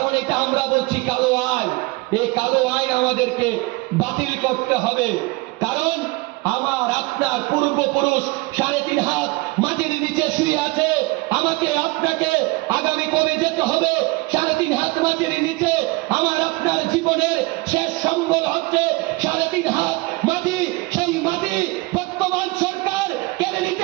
এটা আমরা বলছি কালো আইন। এই কালো আইন আমাদেরকে বাতিল করতে হবে। কারণ আমার আপনার পূর্বপুরুষ 3.5 হাত মাটির নিচে শুয়ে আছে। আমাকে আপনাকে আগামী কবে যেতে হবে 3.5 হাত মাটির নিচে? আমার আপনার জীবনের শেষ সম্বল হচ্ছে 3.5 হাত মাটি। সেই মাটি বর্তমান সরকার কেড়ে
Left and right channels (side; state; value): left; quieter; 23.7 dB